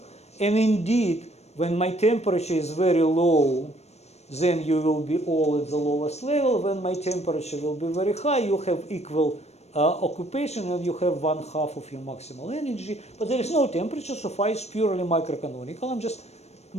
And indeed, when my temperature is very low, then you will be all at the lowest level. When my temperature will be very high, you have equal occupation and you have 1/2 of your maximal energy. But there is no temperature, so phi is purely microcanonical. I'm just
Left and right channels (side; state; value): right; late; 0.31 ms